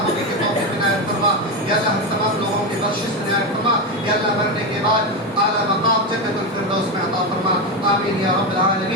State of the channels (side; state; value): both; normal; correlation 0.13